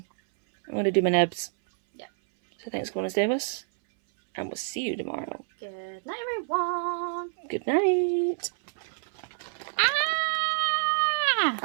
I'm going to do my nibs. Yeah. So thanks for coming to stay with us. And we'll see you tomorrow. Good night, everyone. Good night.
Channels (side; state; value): left; silent; 60 dB below the other